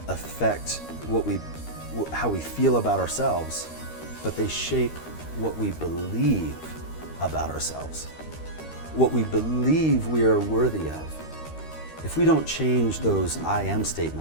affect how we feel about ourselves, but they shape what we believe about ourselves, what we believe we are worthy of. If we don't change those I am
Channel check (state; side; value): late; right; 13 ms